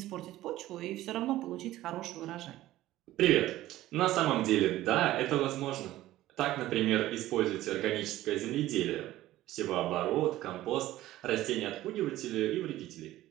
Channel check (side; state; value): left; quieter; 15.3 dB